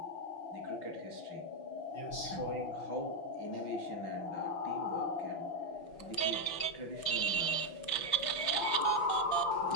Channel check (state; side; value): late; right; 5.9 ms